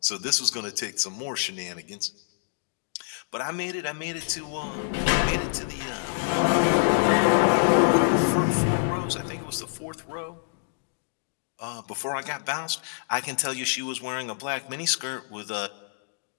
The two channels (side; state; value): right; silent; digital silence